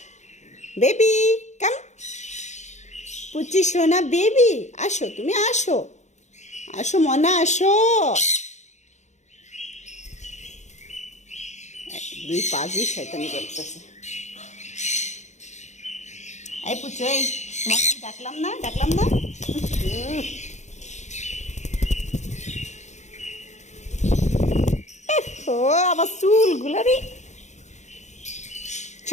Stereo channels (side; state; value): right; late; 0.34 ms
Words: বেবি কাম। পুচি সোনা বেবি আসো, তুমি আসো আসো মনা আসো। দুই পা দিয়ে শয়তানি করতেছে। এই পুচু, এই তোমাকে আমি ডাকলাম না, ডাকলাম না? ও আমার চুলগুলো রে।